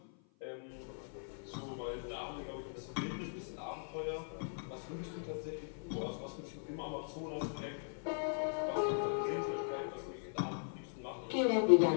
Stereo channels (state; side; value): silent; right; 52 dB below the other